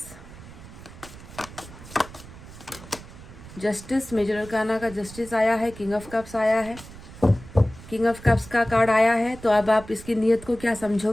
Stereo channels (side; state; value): right; noise; rumble, 17 dB below the sound